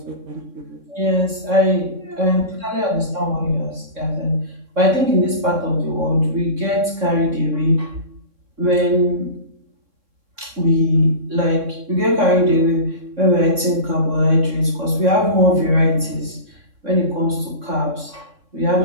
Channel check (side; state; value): left; late; 3.6 ms